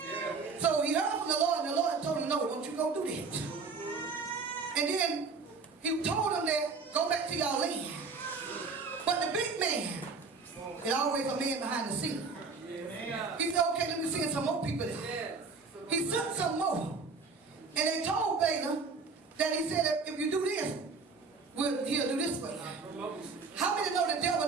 So he heard from the Lord, and the Lord told him, no, don't you go do that. And then he told him that, go back to your land. But the big man is always a man behind the scene. He said, okay, let me send some more people there. He sent some more. And they told Balaam that he said that if you do this, he'll do this for you. How many know the devil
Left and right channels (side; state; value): left; quieter; 4.6 dB